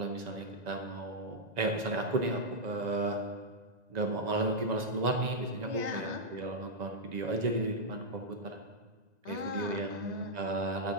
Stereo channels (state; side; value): late; left; 1.9 ms